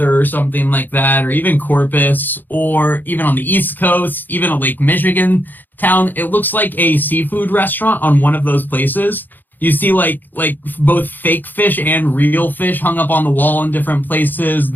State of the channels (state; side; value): late; right; 0.089 ms